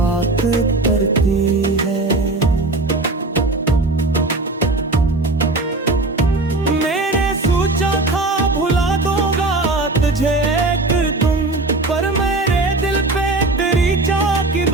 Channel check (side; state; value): left; quieter; 3.0 dB